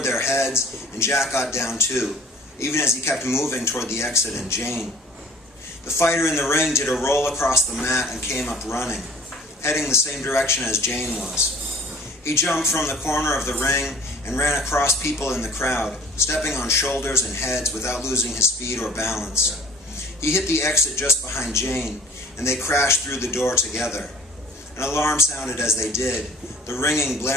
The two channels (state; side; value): normal; both; correlation 0.49